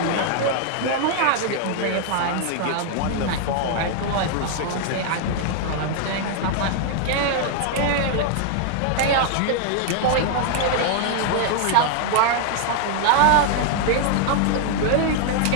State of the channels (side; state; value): both; different; correlation 0.00